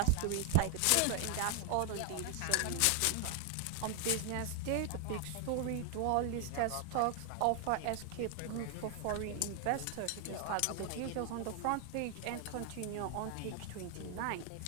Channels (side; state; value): both; different; correlation 0.01